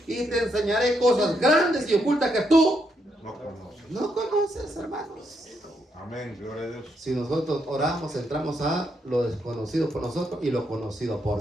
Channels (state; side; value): normal; both; correlation 0.78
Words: y te enseñaré cosas grandes y ocultas que tú no conoces, hermanos. Amén, gloria a Dios. Si nosotros oramos, entramos a lo desconocido por nosotros y lo conocido